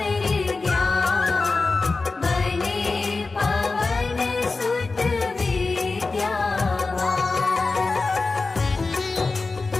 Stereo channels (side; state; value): right; quieter; 3.8 dB